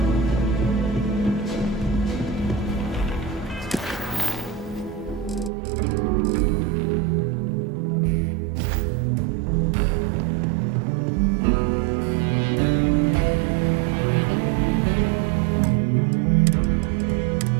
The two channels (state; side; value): drops out; left; at 5.5 s